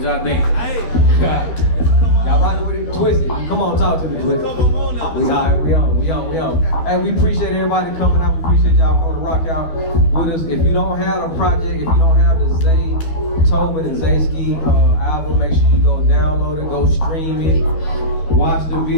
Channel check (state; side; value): late; right; 12 ms